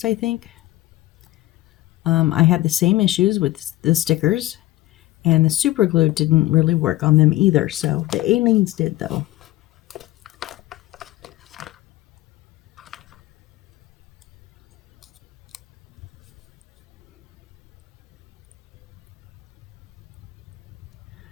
I think, I had the same issues with the stickers, and the super glue didn't really work on them either. So the Aleene's did though.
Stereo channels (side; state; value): right; quieter; 16.6 dB